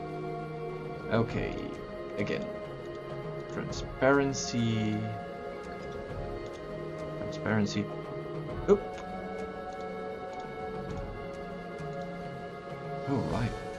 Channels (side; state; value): both; identical; correlation 1.00